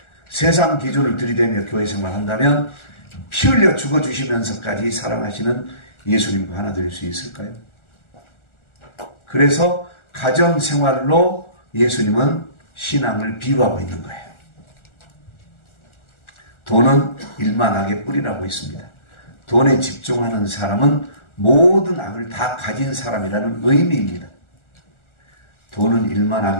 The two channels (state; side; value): late; right; 1.4 ms